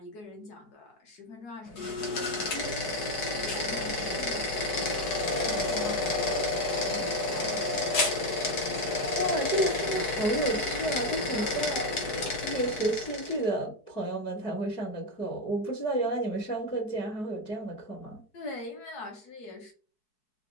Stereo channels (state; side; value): late; right; 4.7 ms